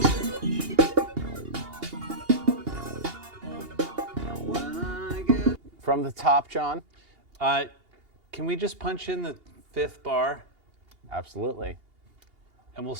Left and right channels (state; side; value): late; left; 2.8 ms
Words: When I get From the top, John? Can we just punch in the 5th bar? Absolutely. And we'll